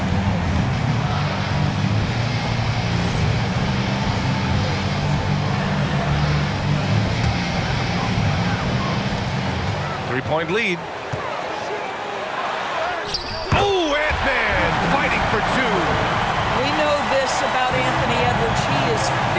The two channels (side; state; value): both; identical; correlation 1.00